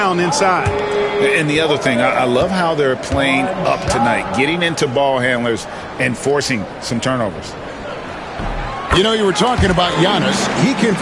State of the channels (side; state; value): both; identical; correlation 1.00